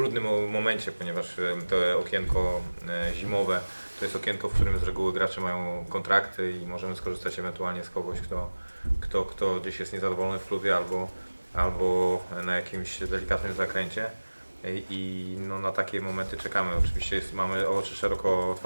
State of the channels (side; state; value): both; inverted; correlation -1.00